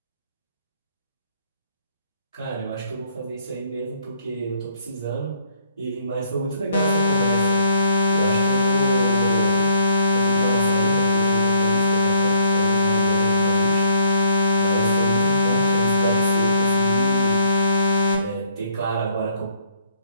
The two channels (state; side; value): inverted; both; correlation -0.66